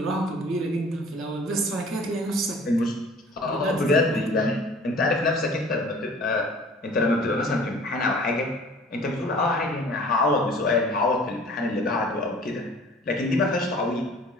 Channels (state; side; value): normal; both; correlation 0.48